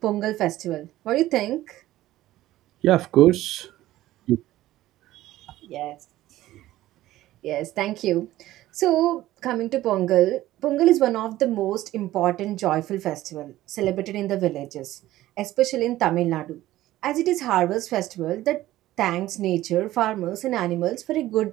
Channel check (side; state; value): left; quieter; 15.3 dB